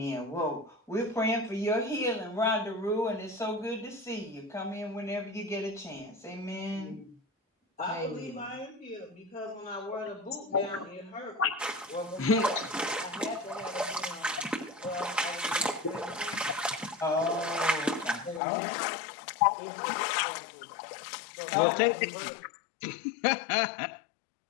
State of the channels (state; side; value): drops out; right; at 18.4 s